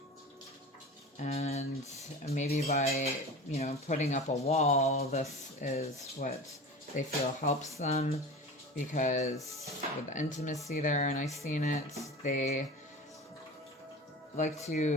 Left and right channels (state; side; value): normal; both; correlation 0.33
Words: And maybe by, you know, putting up a wall, this is what they feel helps them, because with the intimacy there, and I've seen it, they like